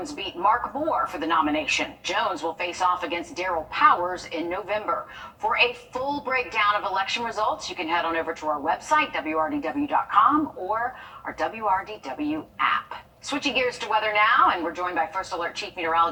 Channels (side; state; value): both; identical; correlation 1.00